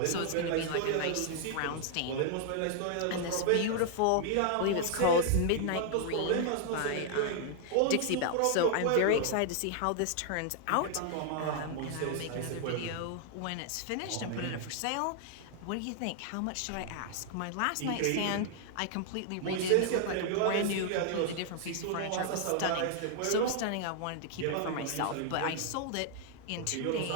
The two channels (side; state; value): both; different; correlation 0.00